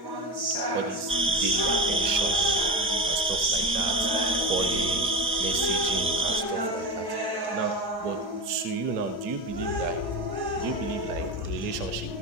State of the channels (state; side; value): normal; both; correlation 0.24